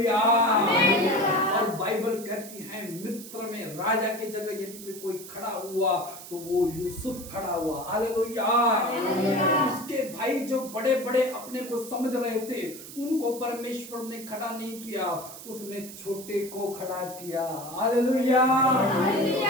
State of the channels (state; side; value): noise; right; hiss, 14 dB below the sound